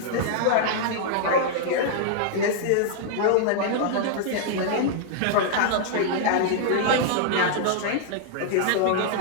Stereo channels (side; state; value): both; different; correlation -0.01